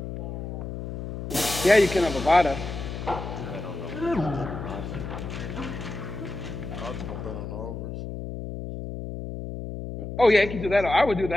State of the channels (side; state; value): left; noise; hum, 7 dB below the sound